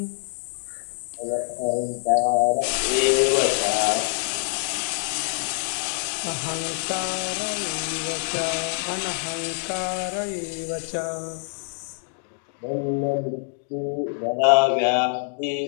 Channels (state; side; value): silent; right; 62 dB below the other